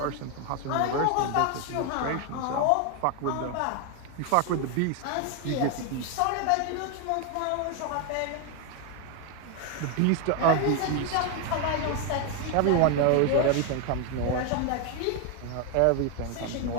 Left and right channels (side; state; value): both; different; correlation 0.01